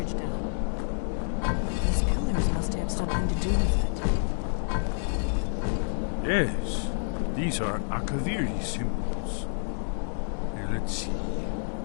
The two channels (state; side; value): silent; right; digital silence